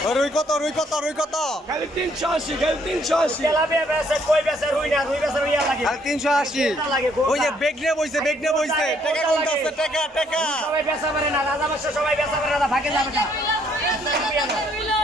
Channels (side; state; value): both; normal; correlation 0.67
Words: রুই কত? রুই কত? রুই কত? খালি 380, খালি 380। তেলাপিয়া বেচে, কই বেচে, রুই না, রুই বেচে রুইয়া লাগে। খালি 380। ওই যে বেগনে বইছে, বেগনে বইছে। টাকা কোনটা আছে? টাকা টাকা সবাই বেচা পারে না, রাজা বাদশা সবাই বেচা পারে না, ভাগে যাবে না।